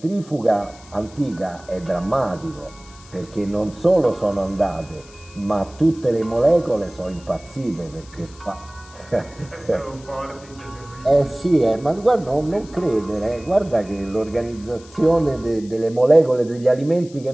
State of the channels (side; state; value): left; noise; hiss, 23 dB below the sound